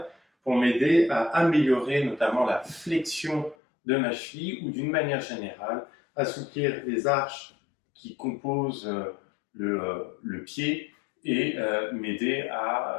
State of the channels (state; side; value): drops out; right; at 3.6 s